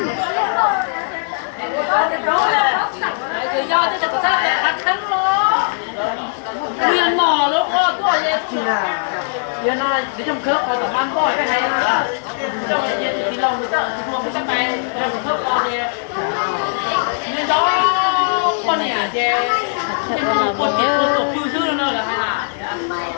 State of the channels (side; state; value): right; silent; 67 dB below the other